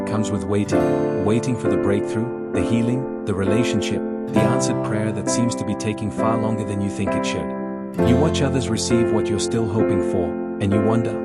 comes with waiting for the breakthrough, the healing, the relationship, the answered prayer that seems to be taking far longer than you think it should. You watch others receive what you're still hoping for, and you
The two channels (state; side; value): identical; both; correlation 1.00